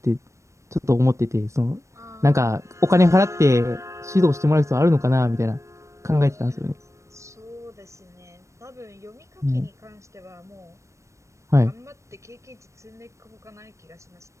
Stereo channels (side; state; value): left; late; 0.15 ms